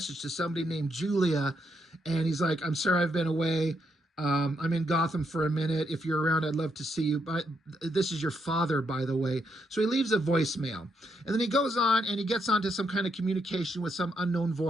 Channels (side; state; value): both; normal; correlation 0.78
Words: to somebody named Julia, and he's like, "I'm sorry I've been away. I'm in Gotham for a minute. If you're around, I'd love to see you. But this is your father, by the way." So he leaves a voicemail. And then he goes on and he gets onto some kind of communication with some unknown